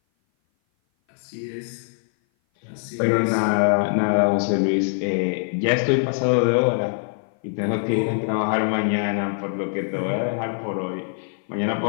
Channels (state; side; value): silent; right; 57 dB below the other